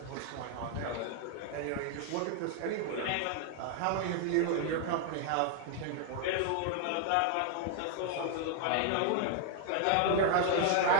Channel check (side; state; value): both; different; correlation 0.00